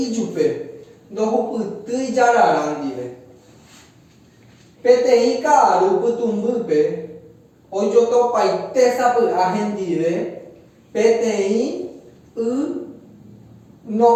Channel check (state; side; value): identical; both; correlation 1.00